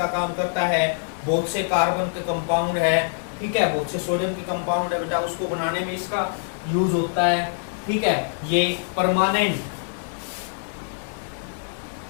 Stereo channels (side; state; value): right; silent; digital silence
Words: काम करता है, बहुत से कार्बन के कंपाउंड है, ठीक है, बहुत से सोडियम के कंपाउंड है बेटा, उसको बनाने में इसका यूज होता है, ठीक है। ये permanent